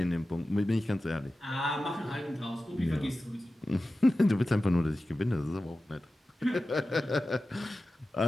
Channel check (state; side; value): normal; both; correlation 0.94